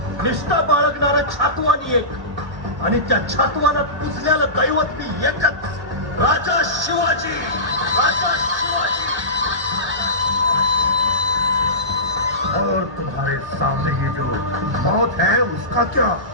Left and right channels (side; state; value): left; late; 1.3 ms